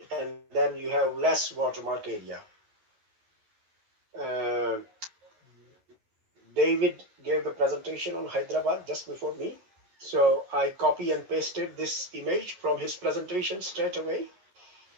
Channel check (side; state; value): left; late; 11 ms